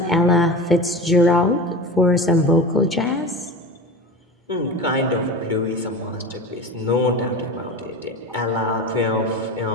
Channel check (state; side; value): normal; both; correlation 0.30